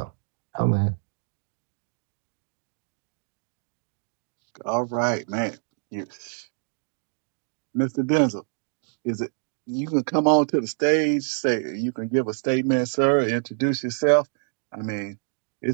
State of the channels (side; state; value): left; silent; digital silence